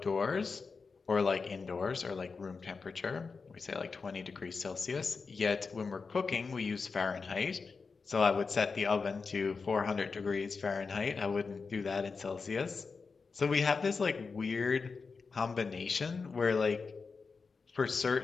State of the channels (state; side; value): quieter; right; 4.7 dB